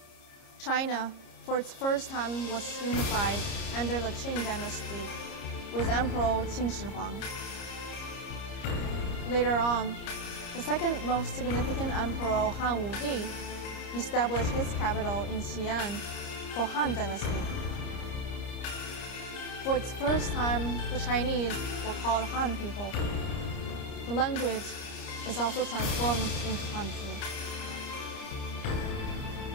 China, for its first time, was unified under the Qing dynasty with Emperor Qin Shi Huang. Later on, the second most significant emperor, Han Wudi, established his capital in Xi'an for Han Dynasty. For its first time, the Chinese were called Han people. The language is also transformed into Hanchu.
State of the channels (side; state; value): right; late; 30 ms